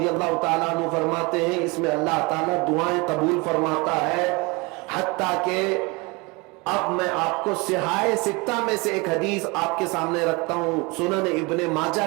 اللہ تعالیٰ عنہ فرماتے ہیں اس میں اللہ تعالیٰ دعائیں قبول فرماتا ہے۔ حتیٰ کہ اب میں آپ کو صحاح ستہ میں سے ایک حدیث آپ کے سامنے رکھتا ہوں، سنن ابن ماجہ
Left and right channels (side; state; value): left; quieter; 26.7 dB